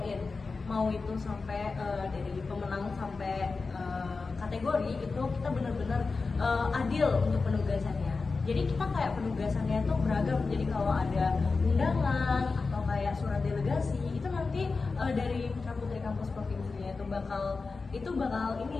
mau itu sampai dari pemenang sampai kategori itu kita bener-bener adil untuk penugasannya. Jadi kita kayak penugasannya itu beragam. Jadi kalau ada undangan atau kayak surat delegasi itu nanti dari Putra Putri Kampus Provinsinya itu bakal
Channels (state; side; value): quieter; right; 4.2 dB